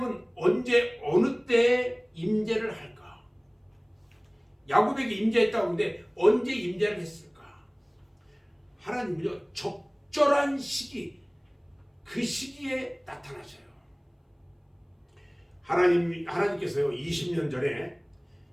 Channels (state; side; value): identical; both; correlation 1.00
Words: 언제 어느 때에 임재를 할까? 야곱에게 임재했다고 하는데 언제 임재를 했을까? 하나님은요, 적절한 시기, 그 시기에 나타나셔요. 하나님께서요, 20년 전에